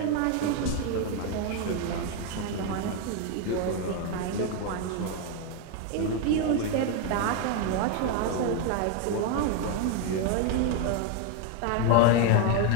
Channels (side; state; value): both; different; correlation 0.01